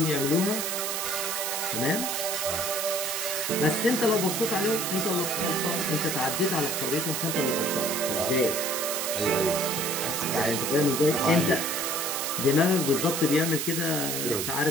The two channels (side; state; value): right; noise; hiss, 1 dB below the sound